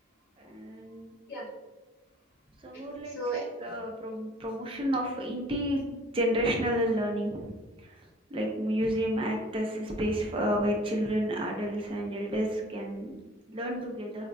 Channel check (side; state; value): both; normal; correlation 0.51